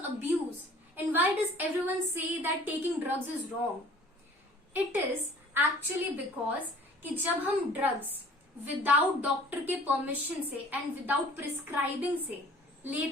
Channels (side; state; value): both; normal; correlation 0.51